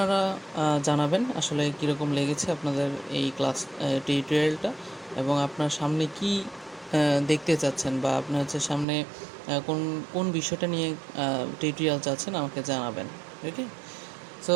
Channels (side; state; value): left; drops out; at 8.8 s